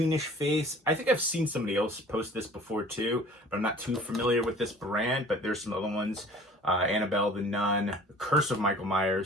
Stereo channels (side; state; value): both; normal; correlation 0.48